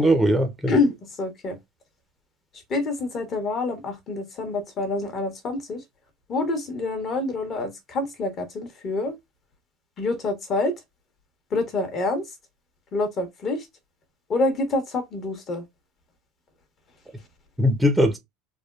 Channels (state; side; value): normal; both; correlation 0.58